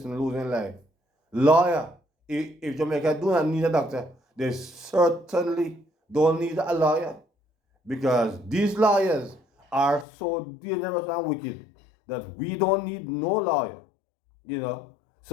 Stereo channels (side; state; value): right; drops out; at 10.1 s